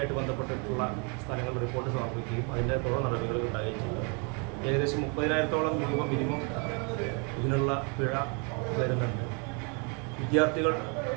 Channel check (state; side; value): quieter; left; 35.1 dB